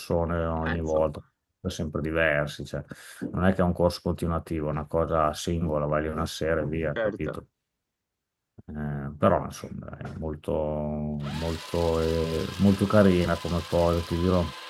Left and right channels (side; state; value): both; identical; correlation 1.00